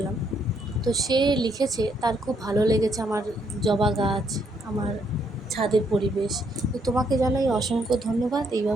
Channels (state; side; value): normal; both; correlation 0.72